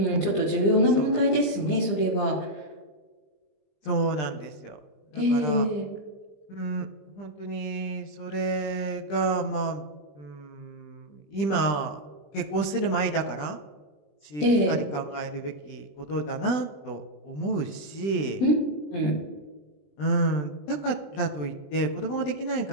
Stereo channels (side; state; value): right; late; 20 ms